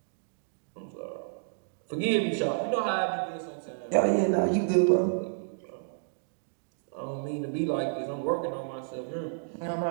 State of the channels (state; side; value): silent; left; digital silence